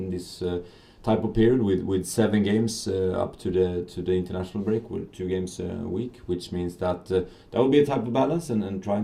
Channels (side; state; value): both; identical; correlation 1.00